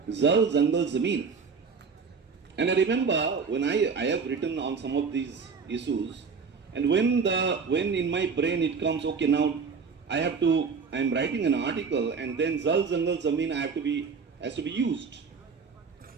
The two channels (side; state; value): left; quieter; 5.4 dB